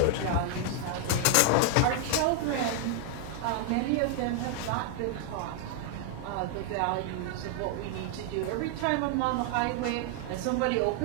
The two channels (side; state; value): both; different; correlation 0.00